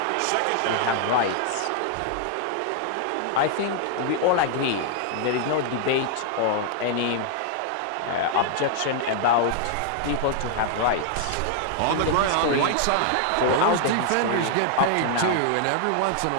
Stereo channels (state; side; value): different; both; correlation 0.00